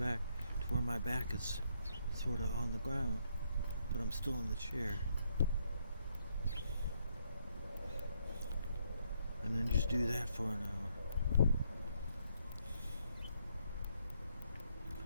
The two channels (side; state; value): both; inverted; correlation -0.73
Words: to where my back is sort of on the ground, but I'm still in the chair. And then just do that for an hour.